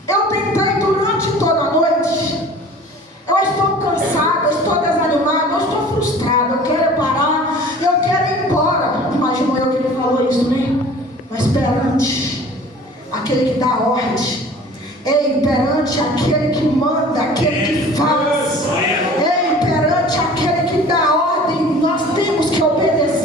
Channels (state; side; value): normal; both; correlation 0.45